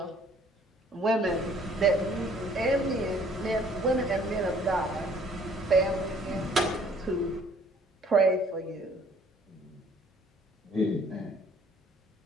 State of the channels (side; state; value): both; normal; correlation 0.59